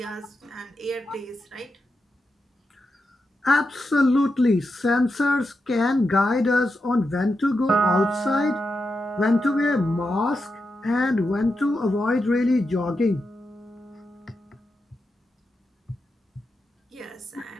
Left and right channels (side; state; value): both; normal; correlation 0.87